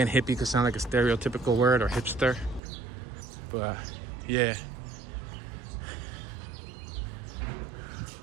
hippie could sound like a stereotypical word, or hipster. But yeah.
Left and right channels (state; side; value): drops out; left; at 2.6 s